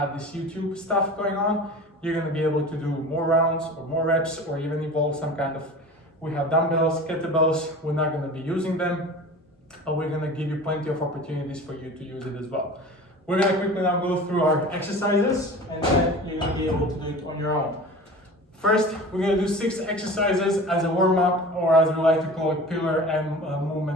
this YouTube stuff going on. You're going to be able to do more rounds or more reps, or even evolve some kind of, we have dumbbells, kettlebells. We're not going to be using them, but we're going to give you plenty of opportunities for you to use it as well. We're going to quickly now go through our exercises, and then you're going to be able to do it on your own. First, we're going to do 6 exercises as a warm-up, or as we like to call it, pillar and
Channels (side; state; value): both; normal; correlation 0.37